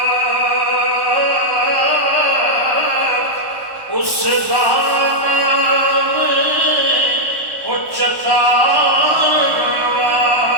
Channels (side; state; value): left; late; 1.1 ms